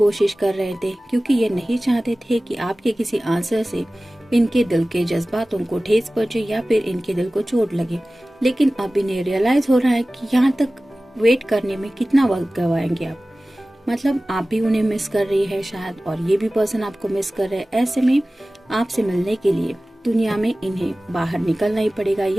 कर रहे थे, क्योंकि ये नहीं चाहते थे कि आपके किसी आंसर से इनके दिल के जज्बातों को ठेस पहुंचे या फिर इनके दिल को चोट लगे। लेकिन अब इन्हें रियलाइज हो रहा है कि यहाँ तक वेट करने में कितना वक्त गवाएंगे आप। मतलब आप भी उन्हें मिस कर रही है शायद, और ये भी पर्सन आपको मिस कर रहे हैं। ऐसे में आपसे मिलने के लिए दुनिया में इन्हें बाहर निकलना ही पड़ेगा,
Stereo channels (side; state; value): both; normal; correlation 0.97